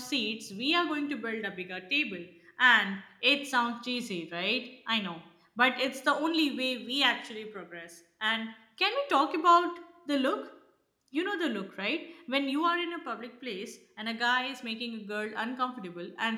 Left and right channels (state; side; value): identical; both; correlation 1.00